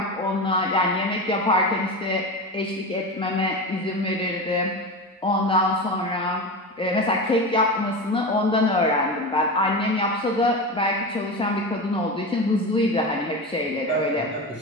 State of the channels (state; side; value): normal; both; correlation 0.24